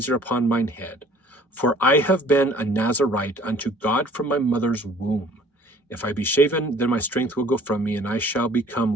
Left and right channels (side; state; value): both; normal; correlation 0.54